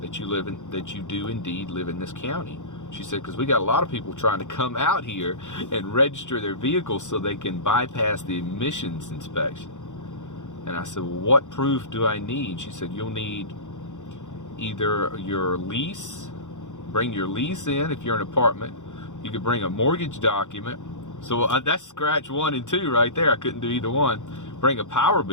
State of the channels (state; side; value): late; right; 0.85 ms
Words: you do indeed live in this county. She said, because we got a lot of people trying to come out here and register their vehicles so they can bypass the emissions inspection. And I said, well, what proof do I need? She said, you'll need either your lease, bring your lease in if you're an apartment. You could bring a mortgage document. So that's scratch 1 and 2 right there. I couldn't do either one. Bring a power